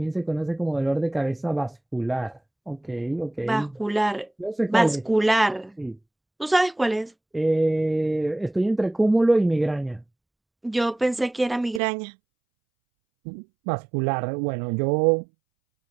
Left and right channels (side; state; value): left; drops out; at 11.8 s